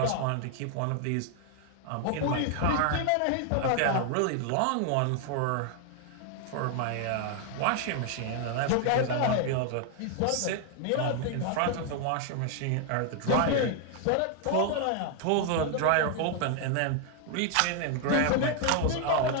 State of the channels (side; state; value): both; different; correlation 0.00